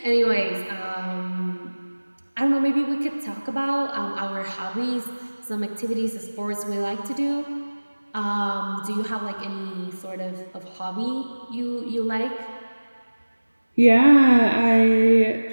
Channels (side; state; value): both; inverted; correlation -1.00